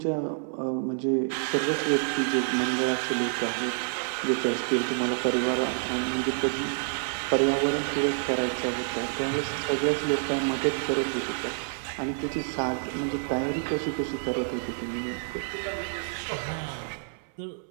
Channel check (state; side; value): silent; left; 59 dB below the other